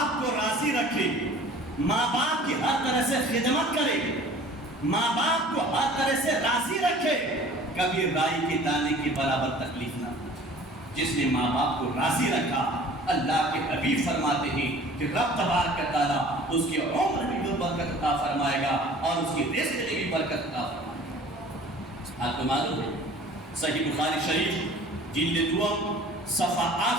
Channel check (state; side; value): normal; both; correlation 0.48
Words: کو راضی رکھے، ماں باپ کی ہر طرح سے خدمت کرے، ماں باپ کو ہر طرح سے راضی رکھے، کبھی رائی کے دانے کے برابر تکلیف نہ ہو۔ جس نے ماں باپ کو راضی رکھا، اللہ کے حبیب فرماتے ہیں کہ رب تبارک و تعالیٰ اس کی عمر میں بھی برکت عطا فرمائے گا اور اس کی رزق میں بھی برکت عطا فرمائے گا۔ آپ کو معلوم ہے صحیح بخاری شریف جلد دوم صفحہ